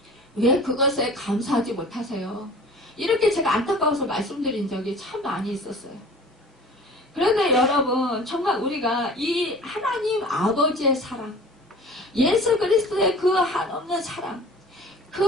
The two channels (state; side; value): normal; both; correlation 0.44